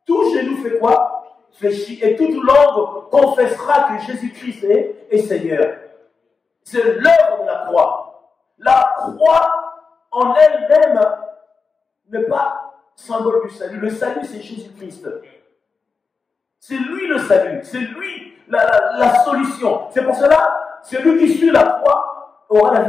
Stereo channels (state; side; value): quieter; right; 4.8 dB